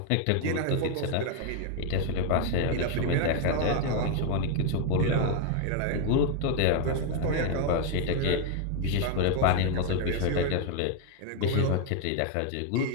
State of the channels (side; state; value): both; different; correlation 0.01